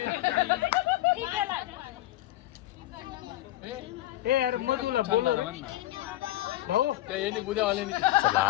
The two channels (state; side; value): quieter; right; 15.7 dB